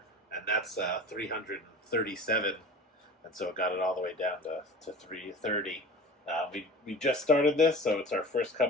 and that's 337, and so it got it all the way down to 330. We just started this, so it's our first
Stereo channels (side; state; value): both; normal; correlation 0.37